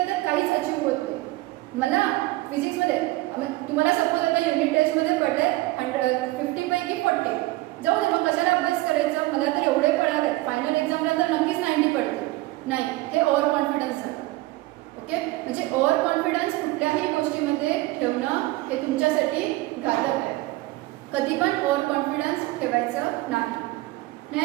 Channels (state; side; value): quieter; left; 19.3 dB